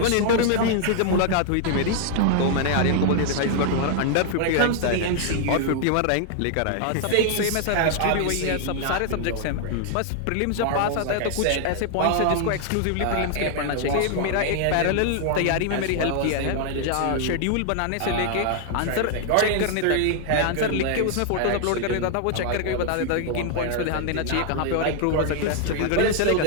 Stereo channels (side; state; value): both; different; correlation 0.00